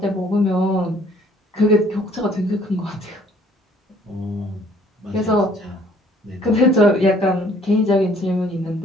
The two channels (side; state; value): both; normal; correlation 0.59